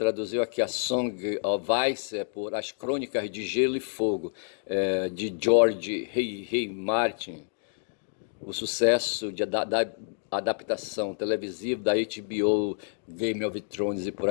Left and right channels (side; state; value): right; silent; digital silence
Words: aqui a Song of Ice por As Crônicas de Gelo e Fogo, de George R. R. Martin. O sucesso da adaptação televisiva da HBO, Game of Thrones e por